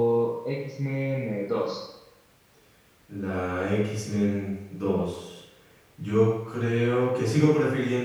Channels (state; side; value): identical; both; correlation 1.00